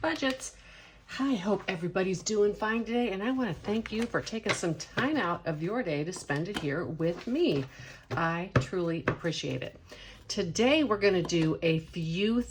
Budgets. I hope everybody's doing fine today, and I want to thank you for taking some time out of your day to spend it here with me. I truly appreciate it. Today we're going to do a few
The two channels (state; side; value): identical; both; correlation 1.00